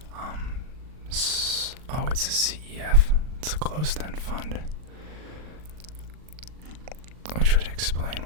It's a CEF. It's a closed-end fund, which would explain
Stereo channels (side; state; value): left; late; 39 ms